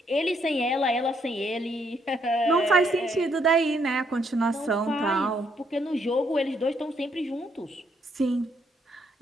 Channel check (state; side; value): normal; both; correlation 0.72